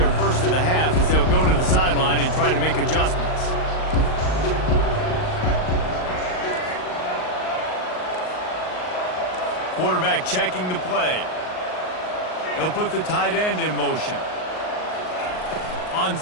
first of the half as they'll go to the sideline and try to make adjustments. Quarterback checking the play. They'll put the tight end in motion. On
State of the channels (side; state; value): right; late; 38 ms